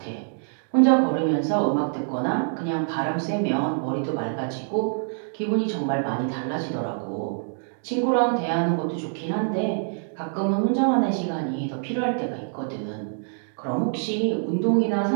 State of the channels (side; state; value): left; silent; digital silence